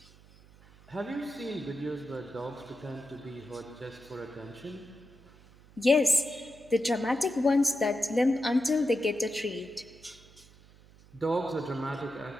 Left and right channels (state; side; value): noise; right; hum, 24 dB below the sound